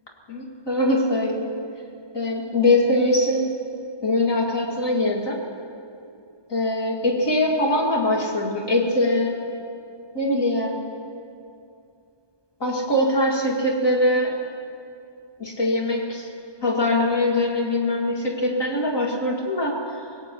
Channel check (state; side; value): late; right; 1.2 ms